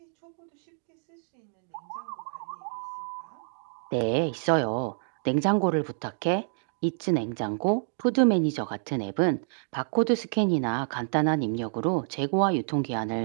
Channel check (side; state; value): left; silent; digital silence